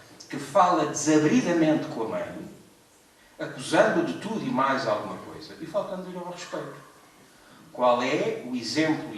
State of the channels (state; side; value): identical; both; correlation 1.00